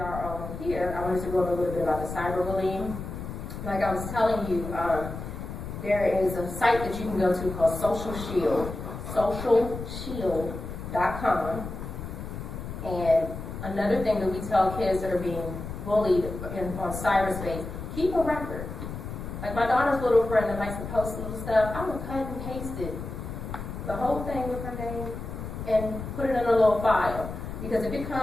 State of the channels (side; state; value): left; noise; rumble, 8 dB below the sound